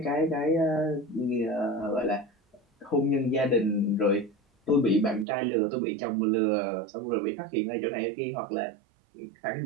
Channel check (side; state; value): left; drops out; at 5.2 s